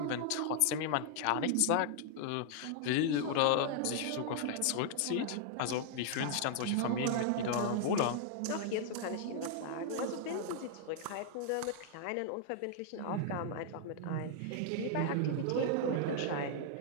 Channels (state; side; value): different; both; correlation -0.01